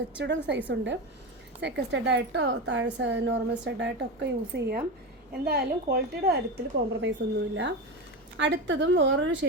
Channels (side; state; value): both; normal; correlation 0.20